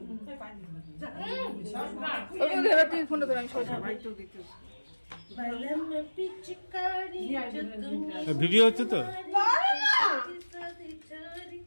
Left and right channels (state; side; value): inverted; both; correlation -1.00